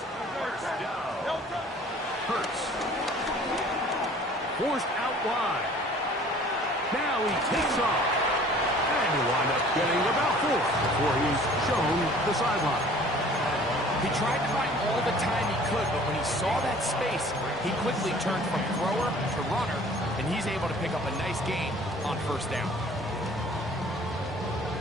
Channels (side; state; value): both; normal; correlation 0.50